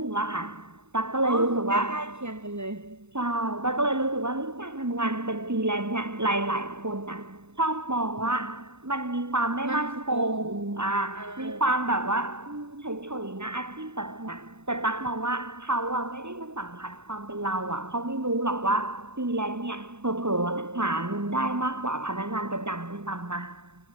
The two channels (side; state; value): left; late; 0.82 ms